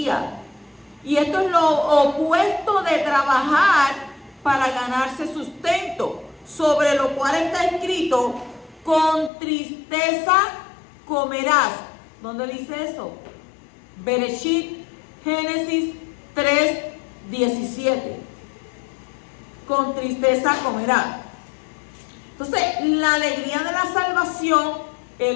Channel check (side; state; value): right; drops out; at 9.3 s